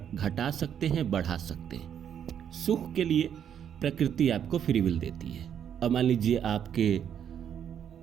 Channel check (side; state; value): left; quieter; 8.9 dB